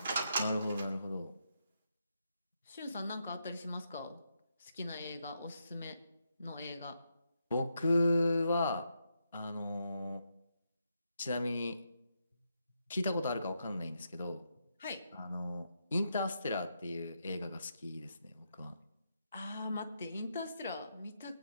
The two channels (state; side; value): inverted; both; correlation -0.82